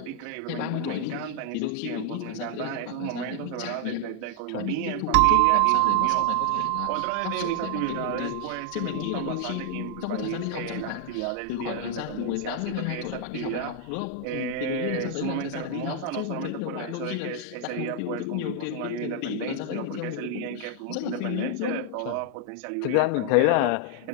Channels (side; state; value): both; different; correlation 0.00